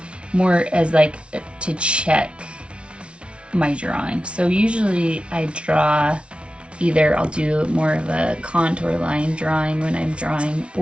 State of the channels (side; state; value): left; late; 0.059 ms